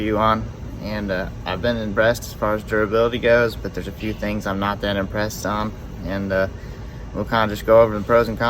on. And I've been impressed as far as durability goes, but there's a few things I'm not that impressed on, and we'll kind of just go over the pros and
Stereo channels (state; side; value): identical; both; correlation 1.00